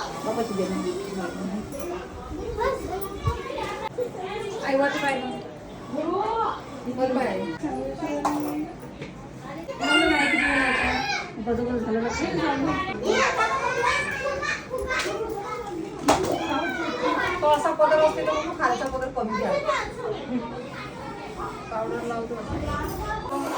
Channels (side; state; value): both; identical; correlation 1.00